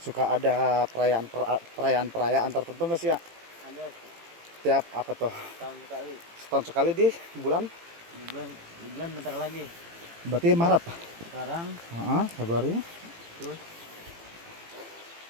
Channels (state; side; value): late; left; 18 ms